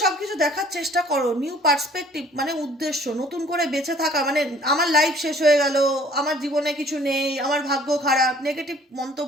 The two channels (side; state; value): both; normal; correlation 0.54